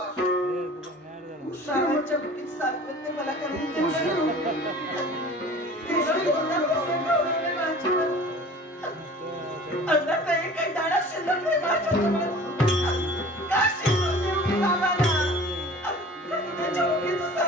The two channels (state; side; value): normal; both; correlation 0.43